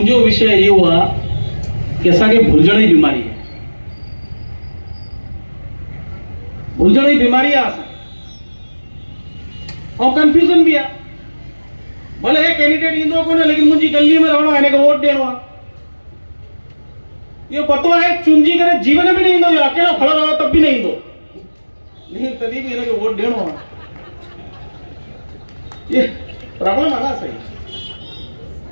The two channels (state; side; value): inverted; both; correlation -1.00